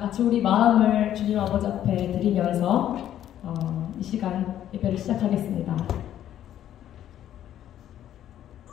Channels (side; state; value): right; quieter; 11.4 dB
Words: 우리 마음을 주님 아버지 앞에 드리면서 이 시간 예배를 시작하겠습니다.